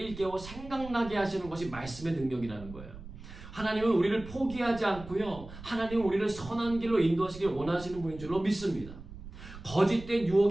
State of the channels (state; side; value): noise; right; rumble, 14 dB below the sound